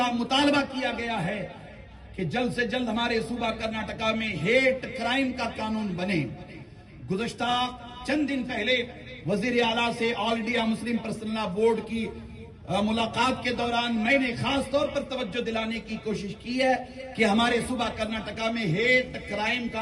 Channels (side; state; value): both; identical; correlation 1.00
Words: مطالبہ کیا گیا ہے کہ جلد سے جلد ہمارے صوبہ کرناٹکا میں ہیٹ کرائم کا قانون بنے۔ گزشتہ چند دن پہلے وزیر اعلیٰ سے آل انڈیا مسلم پرسنل لا بورڈ کی ملاقات کے دوران میں نے خاص طور پر توجہ دلانے کی کوشش کی ہے کہ ہمارے صوبہ کرناٹکا میں ہیٹ کرائم